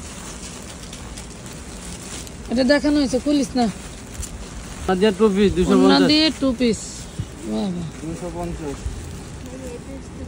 এটা দেখানো হয়েছে, খুলিস না। দিয়ে টু পিস ওন্না 250। দিয়ে টু পিস, বাহ বাহ। 250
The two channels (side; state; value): both; identical; correlation 1.00